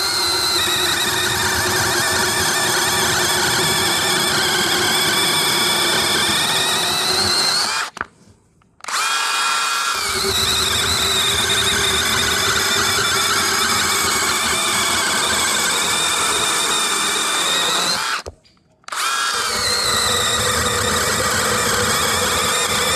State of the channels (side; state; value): both; identical; correlation 1.00